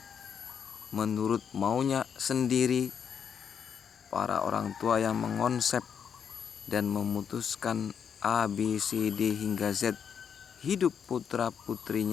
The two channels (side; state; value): right; quieter; 7.5 dB